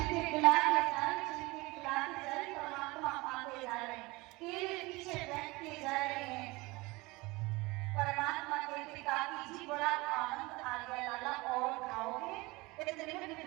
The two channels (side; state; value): left; quieter; 23.1 dB